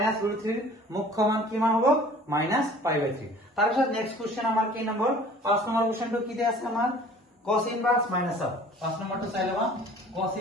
√3 মুখ্য মান কি মান হবে মাইনাস π/3 তারপর নেক্সট কোশ্চেন আমার কি নম্বর 5 নম্বর কোশ্চেনটো কি দেয়া আছে আমার cos ইনভার্স মাইনাস হাফ 5 নম্বরটা চাইলেবা cos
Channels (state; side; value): normal; both; correlation 0.48